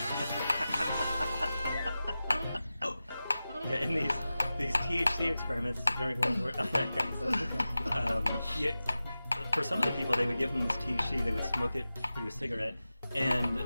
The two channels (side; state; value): both; inverted; correlation -0.94